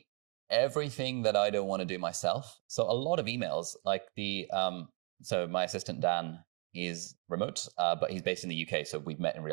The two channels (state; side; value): quieter; left; 35.4 dB